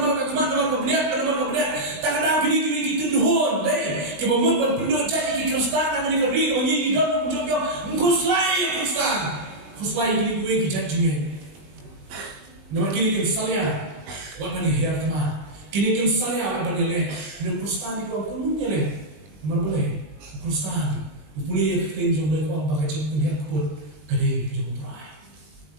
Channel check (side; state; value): left; late; 20 ms